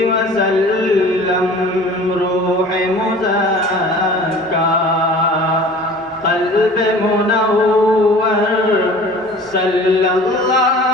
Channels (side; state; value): both; normal; correlation 0.44